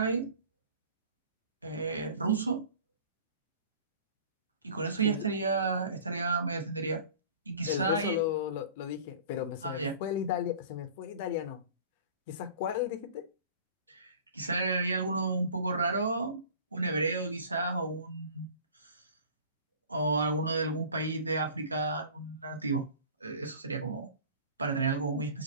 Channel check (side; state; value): both; inverted; correlation -0.44